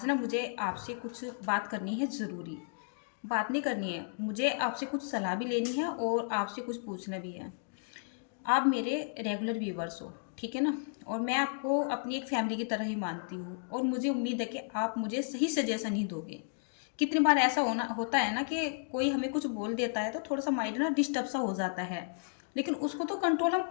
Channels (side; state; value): right; silent; digital silence